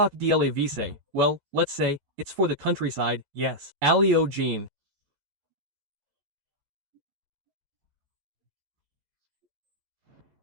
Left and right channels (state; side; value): late; left; 12 ms